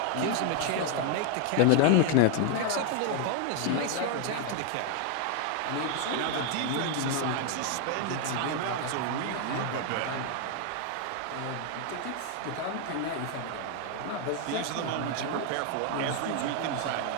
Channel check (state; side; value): different; both; correlation 0.00